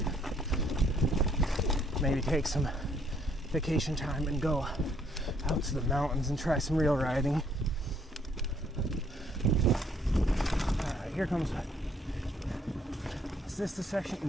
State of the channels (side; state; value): both; normal; correlation 0.66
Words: Maybe take some vacation time and go out to the mountains and try some real riding. Alright, here comes. Is this the section?